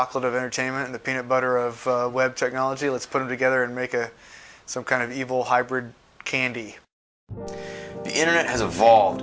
of entertainment and the peanut butter of web technology. Let's put them together and make some kind of evil hybrid candy. The internet has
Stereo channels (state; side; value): identical; both; correlation 1.00